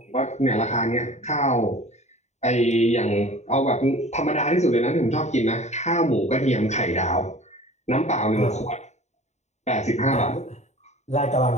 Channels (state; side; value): late; right; 0.33 ms